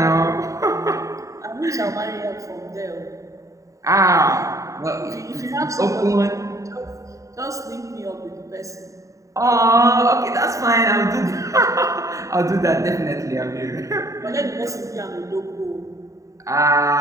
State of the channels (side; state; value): left; late; 0.16 ms